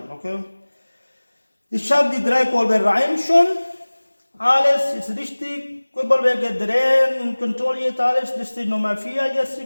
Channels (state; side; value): inverted; both; correlation -1.00